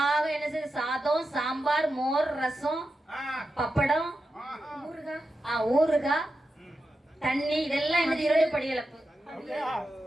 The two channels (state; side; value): normal; both; correlation 0.90